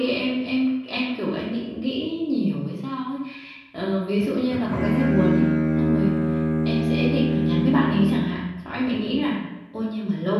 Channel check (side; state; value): both; identical; correlation 1.00